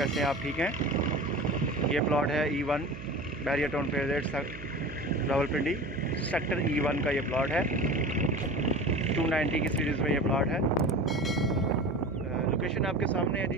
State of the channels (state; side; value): noise; right; hum, 12 dB below the sound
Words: हैं आप? ठीक हैं। ये प्लॉट है E1 बैरियर टाउन फेजेट रावलपिंडी सेक्टर E1 का ये प्लॉट है। 290 की सीरीज़ में ये प्लॉट है। लोकेशन आपके सामने है